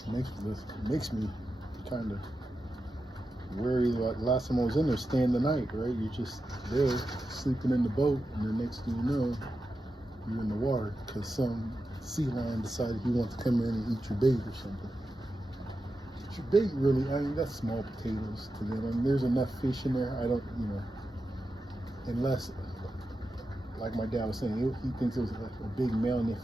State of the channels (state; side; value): normal; both; correlation 0.90